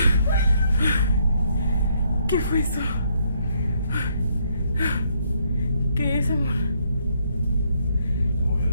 ¿Qué fue eso? ¿Qué es, amor? Se movió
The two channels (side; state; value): both; inverted; correlation -0.71